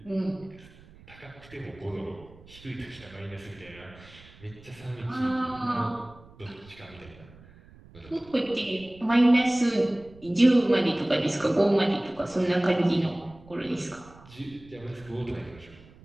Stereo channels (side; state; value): right; noise; rumble, 23 dB below the sound